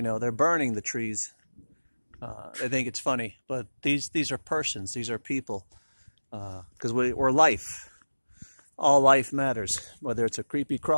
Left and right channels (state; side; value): inverted; both; correlation -1.00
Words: burning the trees. They think it's funny, but these are persons. These are people. Because we're life. All life matters, whether it's a creepy